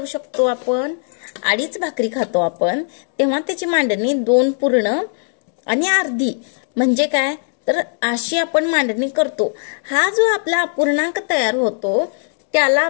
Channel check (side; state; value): right; silent; digital silence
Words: शकतो आपण, अडीच भाकरी खातो आपण तेव्हा त्याची मांडणी 2 पूर्ण आणि अर्धी म्हणजे काय, तर अशी आपण मांडणी करतो. हा जो आपला अपूर्णांक तयार होतो